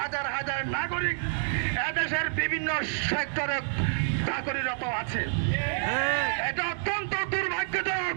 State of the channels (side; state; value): left; silent; digital silence